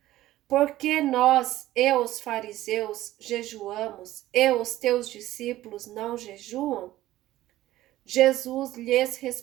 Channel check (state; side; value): quieter; left; 15.2 dB